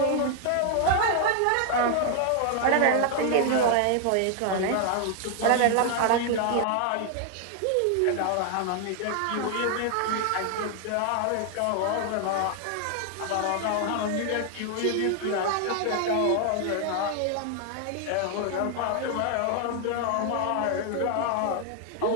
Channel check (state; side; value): different; both; correlation 0.00